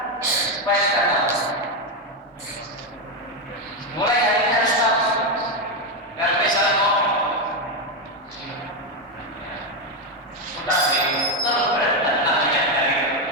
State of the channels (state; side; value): normal; both; correlation 0.08